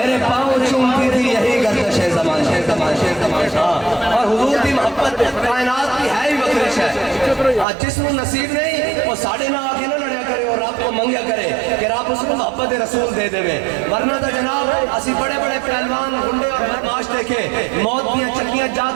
پاؤں چومتی تھی یہی گردش زمان. اور حضور کی محبت کائنات کی ہے ہی بخشش ہے. جس کو نصیب نہیں وہ ساڑھے نہ آگے نہ لڑیا کرے اور رب کو منگیا کرے کہ رب اس کو محبت رسول دے دے. ورنہ تو جناب اسی بڑے بڑے پہلوان گنڈے اور بدماش دیکھے موت دیا چکیاں جا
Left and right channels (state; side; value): drops out; left; at 7.7 s